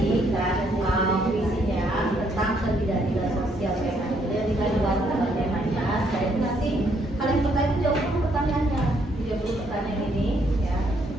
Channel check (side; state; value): both; normal; correlation 0.71